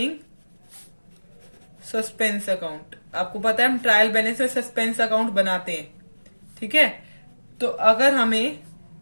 suspense account. आपको पता है हम ट्रायल बैलेंस में सस्पेंस अकाउंट बनाते हैं, ठीक है। तो अगर हमें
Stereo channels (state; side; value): inverted; both; correlation -1.00